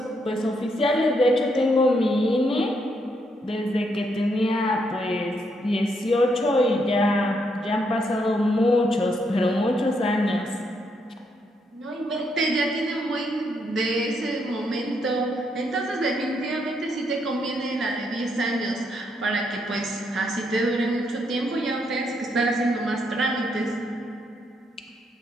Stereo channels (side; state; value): both; normal; correlation 0.76